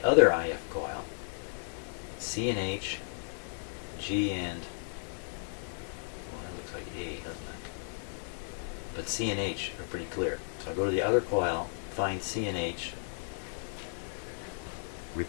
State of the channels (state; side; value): silent; right; digital silence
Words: other IF coil. C and H, G and, well, that looks like A, doesn't it? But C and H are pretty clear. So I go to the other coil, find C and H,